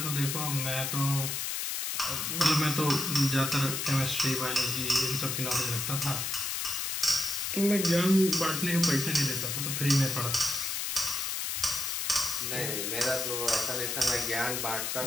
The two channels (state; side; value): noise; left; hiss, 1 dB below the sound